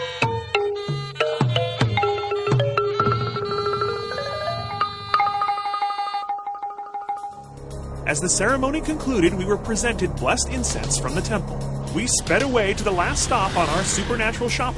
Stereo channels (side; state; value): both; identical; correlation 1.00